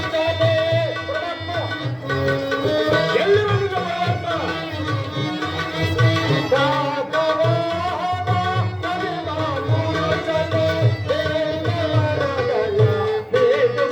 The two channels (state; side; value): identical; both; correlation 1.00